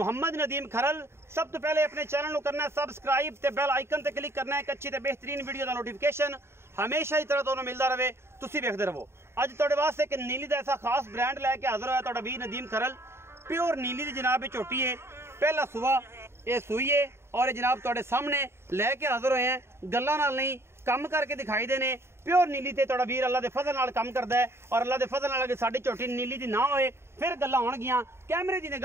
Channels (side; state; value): left; late; 0.12 ms